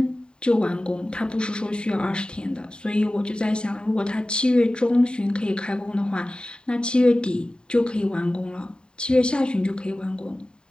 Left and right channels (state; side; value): late; right; 0.049 ms